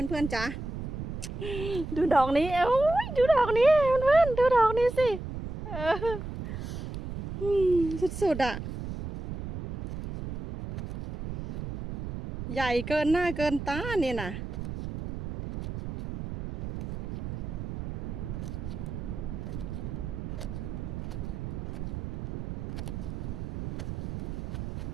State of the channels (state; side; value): noise; right; rumble, 7 dB below the sound